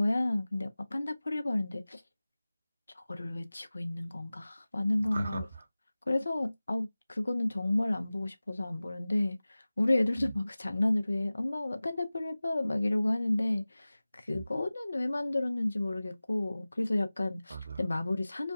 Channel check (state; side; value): inverted; both; correlation -0.98